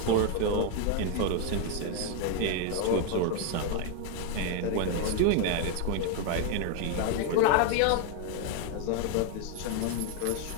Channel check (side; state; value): both; different; correlation 0.01